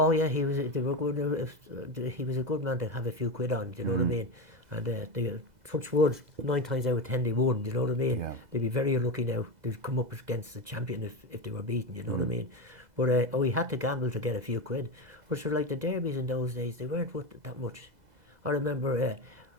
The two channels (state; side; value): late; left; 2.0 ms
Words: yeah, he was. They were good. He was a good man to have a few quid on. Do you know what I mean? And they touch wood, 9 times out of 10 they won. Do you know what I mean? Yeah. They'd be very unlucky now. They'd come up against the champion if they were beaten. You know what I mean? But he had to gamble to get a few quid. But sure, like the derbies in those days, they weren't worth that much. I remember